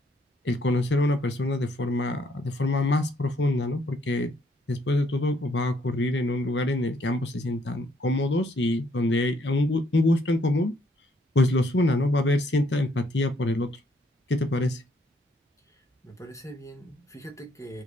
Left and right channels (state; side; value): normal; both; correlation 0.69